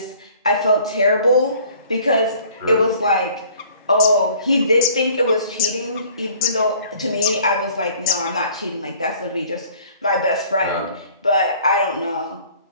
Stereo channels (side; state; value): both; inverted; correlation -0.54